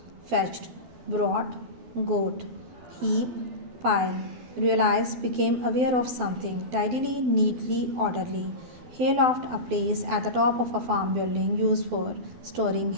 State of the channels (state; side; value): late; left; 12 ms